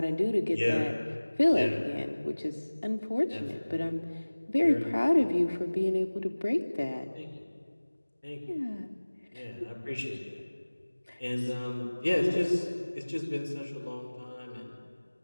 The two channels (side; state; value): both; inverted; correlation -1.00